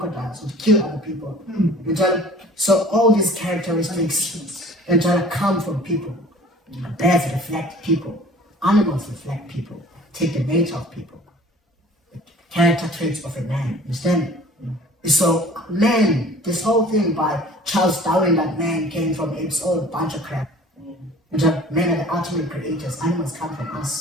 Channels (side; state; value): both; normal; correlation 0.47